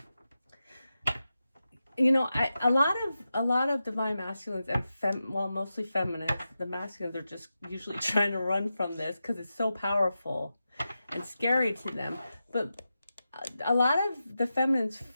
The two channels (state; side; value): inverted; both; correlation -0.91